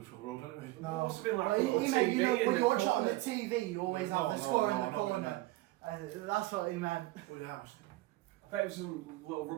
Road, anyway. It must have been like Well, he meant, you know, when you watch it on the corner. TV, you always have the score in the corner. That's what he meant. Oh yeah, I bet it was some little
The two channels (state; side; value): quieter; left; 19.1 dB